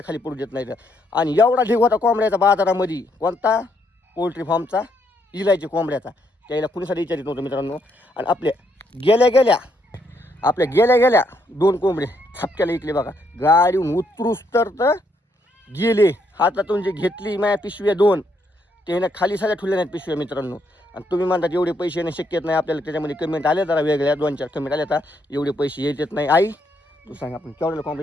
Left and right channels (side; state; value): both; normal; correlation 0.74